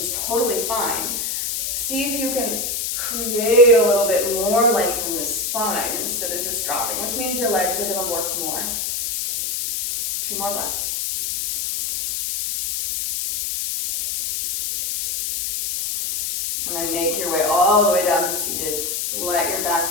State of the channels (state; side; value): noise; left; hiss, 2 dB below the sound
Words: totally fine, see if you can create a little bit more length in the spine instead of just dropping, which means your legs are going to work more. 2 more breaths. And then make your way all the way down to seated. Let your